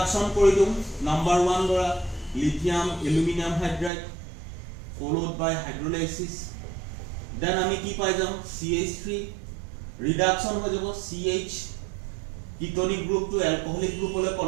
কৰি দিম নাম্বাৰ 1 ধৰা lithium aluminium hydride followed by hydrolysis then আমি কি পাই যাম CH3 ৰিডাকশন হৈ যাব CH ketonic group to alcoholic গ্ৰুপলৈ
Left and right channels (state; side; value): drops out; left; at 3.9 s